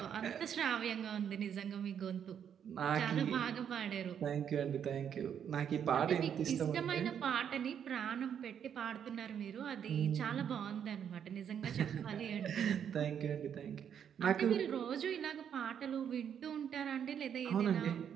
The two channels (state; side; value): quieter; left; 8.5 dB